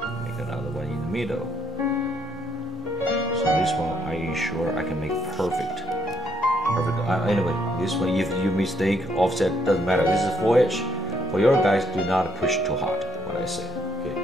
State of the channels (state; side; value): normal; both; correlation 0.71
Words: Make another one in the middle. So this one, I ensure I can make perfect. Anyway, this one, if you mistake, offset doesn't matter. This is 4H. For your guys, do not push too hard. What I say. Okay.